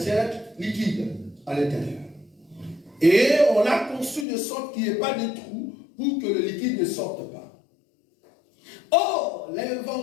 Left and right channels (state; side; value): drops out; right; at 4.2 s